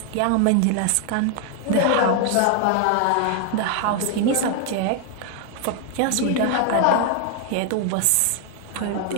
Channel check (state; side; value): different; both; correlation 0.00